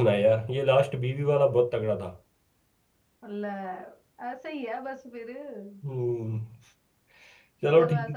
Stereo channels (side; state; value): both; identical; correlation 1.00